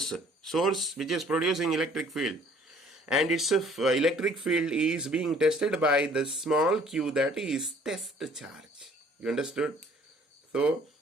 Source which is producing electric field. And its electric field is being tested by the small q, that is test charge. You understood? So,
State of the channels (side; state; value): both; normal; correlation 0.56